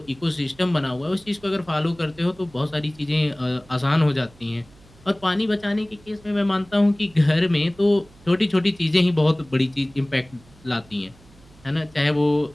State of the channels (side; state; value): right; noise; hum, 26 dB below the sound